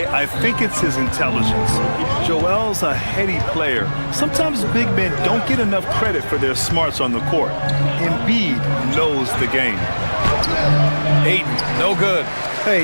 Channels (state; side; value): inverted; both; correlation -1.00